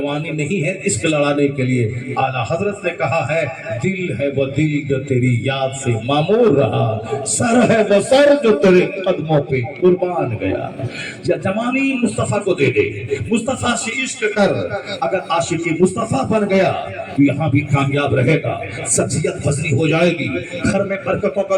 نہیں ہے عشق لڑانے کے لیے، اعلیٰ حضرت نے کہا ہے دل ہے وہ دل جو تیری یاد سے معمور رہا، سر ہے وہ سر جو تیرے قدموں پہ قربان گیا۔ یا جوانی مصطفیٰ کو دے دے، مصطفیٰ سے عشق کر، اگر عاشق مصطفیٰ بن گیا تو یہاں بھی کامیاب رہے گا، سبزیت وزنی ہو جائے گی، گھر میں برکتوں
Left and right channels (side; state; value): both; identical; correlation 1.00